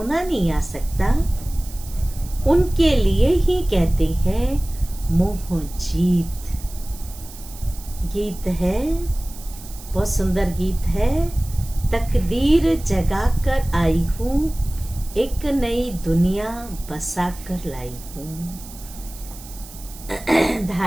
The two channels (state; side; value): noise; right; hiss, 17 dB below the sound